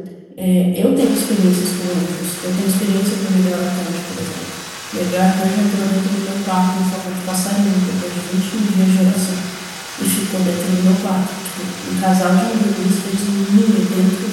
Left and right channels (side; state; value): both; identical; correlation 1.00